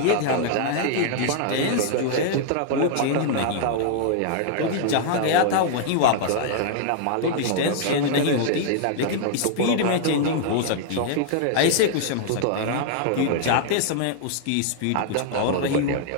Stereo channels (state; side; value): different; both; correlation -0.01